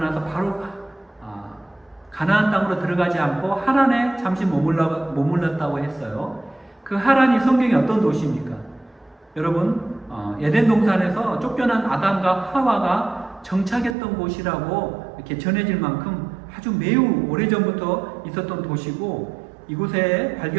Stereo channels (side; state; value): left; drops out; at 14.0 s